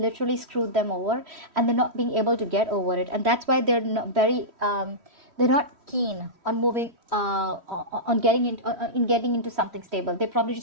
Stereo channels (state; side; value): late; left; 3.1 ms